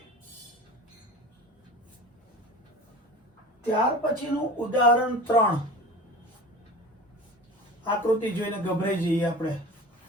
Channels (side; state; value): both; normal; correlation 0.36